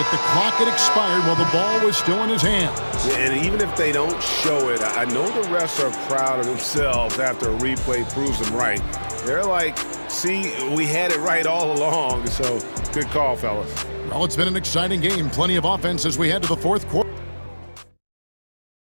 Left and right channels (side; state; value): both; inverted; correlation -1.00